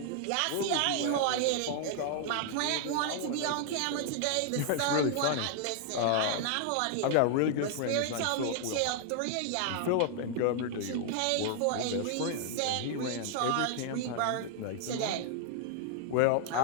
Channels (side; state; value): both; different; correlation 0.00